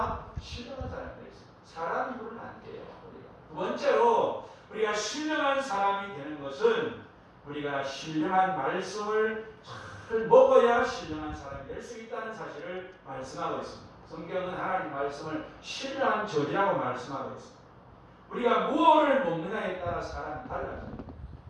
신령한 사람이 될 수 있습니다. 사람 입으로는 안 돼요. 두 번째로 우리가 신령한 사람이 되는 것은 우리가 신령한 말씀을 잘 먹어야 신령한 사람이 될 수 있다는 사실을 말씀하고 있습니다. 성경은 하나님 말씀을 신령한 저지라고 말씀하고 있습니다. 우리가 무엇을 먹느냐에 따라 사람이 달라집니다.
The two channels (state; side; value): identical; both; correlation 1.00